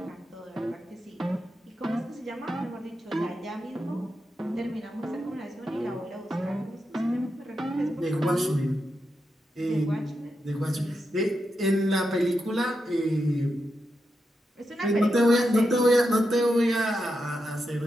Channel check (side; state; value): both; normal; correlation 0.86